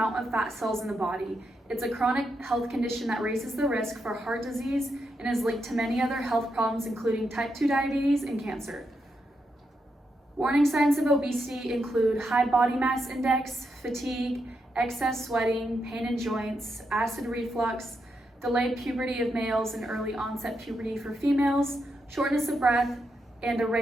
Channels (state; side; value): normal; both; correlation 0.83